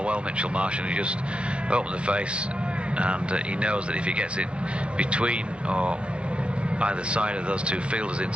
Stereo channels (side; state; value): left; late; 0.059 ms